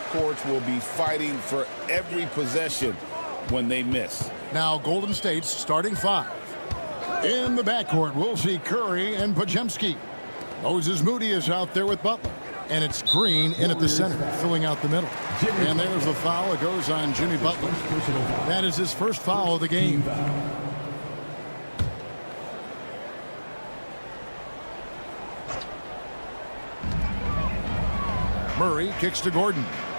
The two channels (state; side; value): inverted; both; correlation -1.00